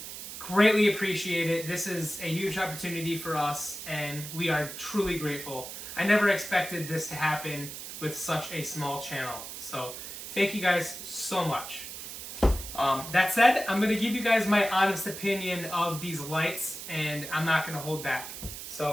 Greatly appreciate it. This is a huge opportunity for us, and we are truly grateful. I never expected this to happen with such a small channel. So thank you guys so much. That said, I'm going to give you guys my honest opinion of these lights, and I'm not going to hold back.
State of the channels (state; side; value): noise; right; hiss, 10 dB below the sound